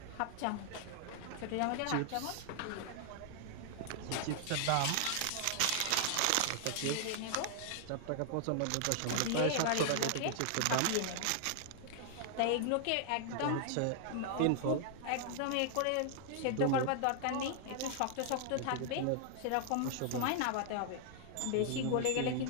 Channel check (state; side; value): different; both; correlation 0.00